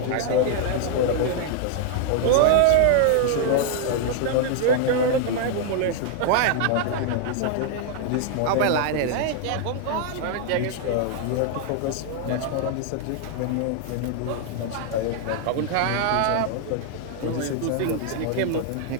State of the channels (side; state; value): both; different; correlation 0.00